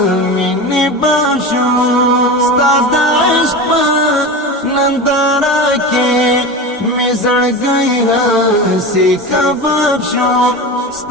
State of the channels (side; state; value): both; normal; correlation 0.26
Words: مینې باب شو ستا د عشق په ننداره کې مې زړګی هسې کباب شو